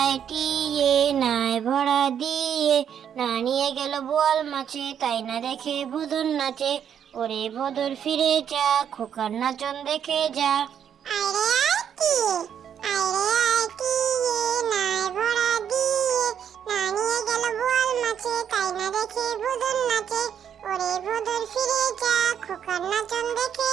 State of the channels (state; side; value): quieter; left; 8.7 dB